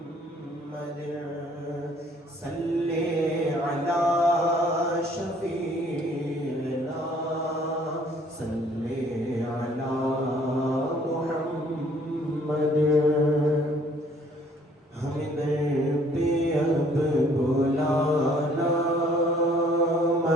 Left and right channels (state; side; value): normal; both; correlation 0.59